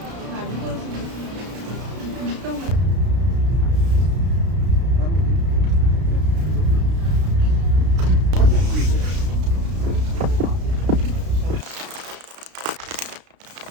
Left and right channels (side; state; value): left; late; 33 ms